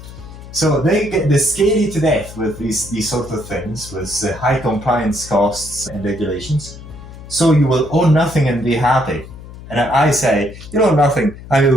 So they scare you to death with these sort of things, with high compliance costs and regulations. So you will own nothing and be happy. And I say, you own nothing and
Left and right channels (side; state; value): left; noise; hum, 15 dB below the sound